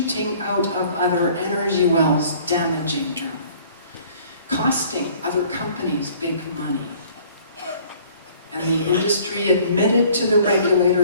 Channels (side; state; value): both; inverted; correlation -0.54